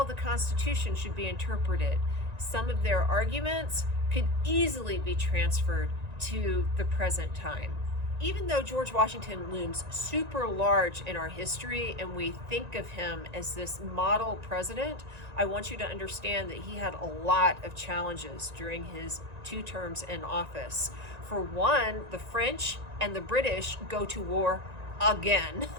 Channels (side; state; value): left; late; 1.9 ms